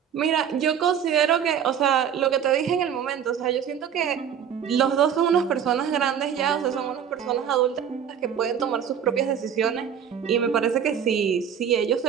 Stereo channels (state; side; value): quieter; left; 8.4 dB